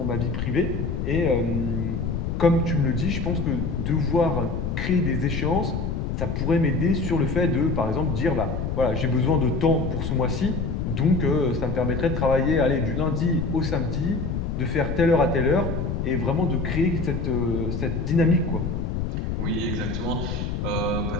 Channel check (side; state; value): left; noise; rumble, 2 dB below the sound